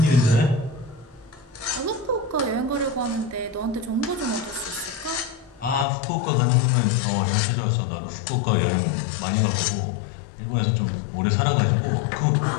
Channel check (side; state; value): right; drops out; at 5.9 s